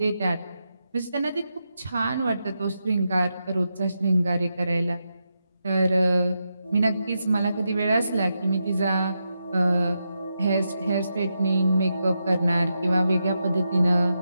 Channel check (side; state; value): both; inverted; correlation -0.86